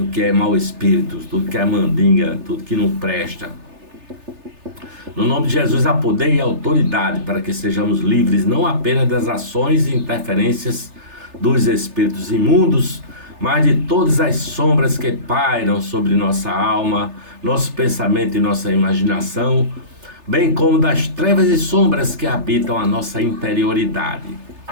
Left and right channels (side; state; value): left; late; 3.3 ms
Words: é mau espírito, tudo que é mandinga, tudo que não presta. No nome de Jesus há poder e autoridade para que sejamos livres não apenas das ações e interferências dos espíritos imundos, mas de todas as sombras que pairam sobre nossa alma, nosso pensamento e nossa imaginação, bem como das trevas e sombras que habitam a nossa interioridade.